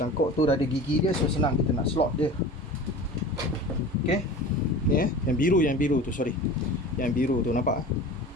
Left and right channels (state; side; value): normal; both; correlation 0.37